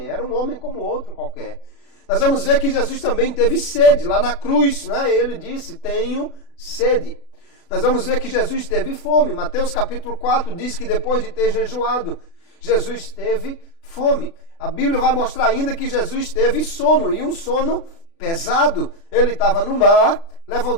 era um homem como outro qualquer. Nós vamos ver que Jesus também teve sede. Lá na cruz, né? Ele disse, tenho sede. Nós vamos ver que Jesus teve fome. Mateus capítulo 4 diz que depois de ter jejuado, Jesus teve fome. A Bíblia vai mostrar ainda que Jesus teve sono, e um sono pesado. Ele estava no mar,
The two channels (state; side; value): late; right; 36 ms